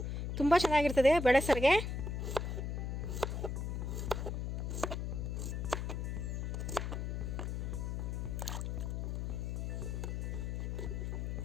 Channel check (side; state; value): left; noise; hum, 2 dB below the sound